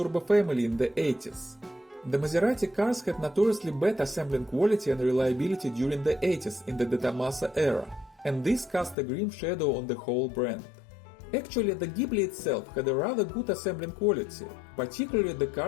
family in the 80s. The Maserati cars had notoriously bad assembling quality and reliability during the 80s in the De Tommaso era, and this cast a grim shadow on the whole brand. Actually, the Ghibli itself had a rather good assembling quality, particularly the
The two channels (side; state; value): right; drops out; at 9.0 s